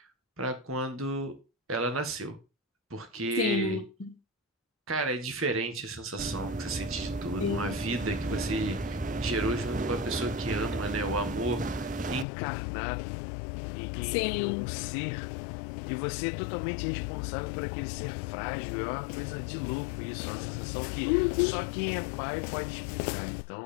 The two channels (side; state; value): right; drops out; at 12.2 s